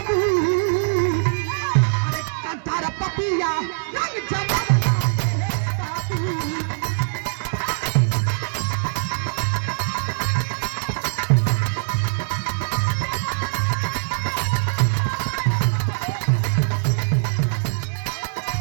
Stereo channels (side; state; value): left; silent; digital silence